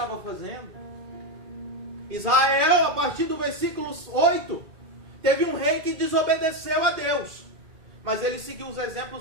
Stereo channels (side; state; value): left; late; 2.4 ms